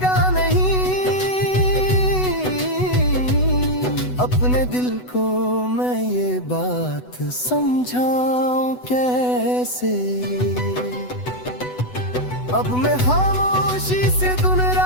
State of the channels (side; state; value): right; late; 8.0 ms